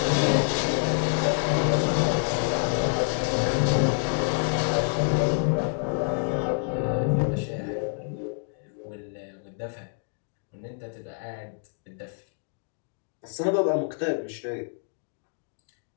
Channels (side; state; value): right; silent; digital silence